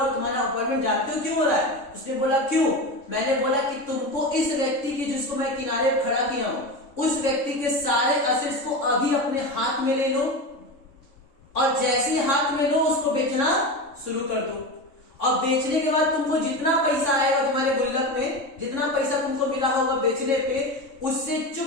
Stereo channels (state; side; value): late; right; 3.6 ms